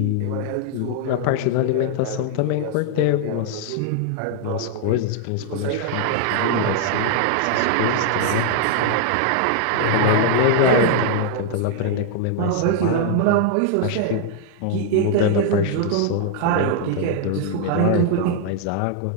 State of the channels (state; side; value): different; both; correlation 0.00